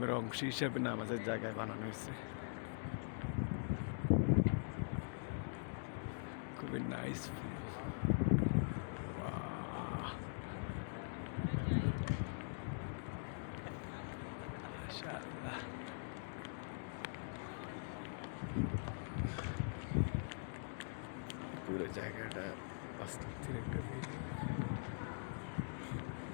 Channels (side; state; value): right; silent; digital silence